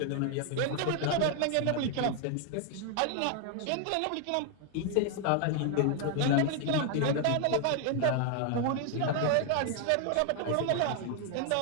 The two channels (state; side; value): different; both; correlation 0.00